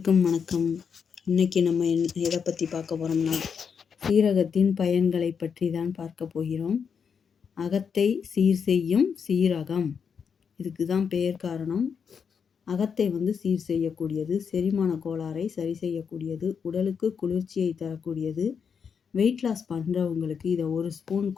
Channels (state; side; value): quieter; right; 6.6 dB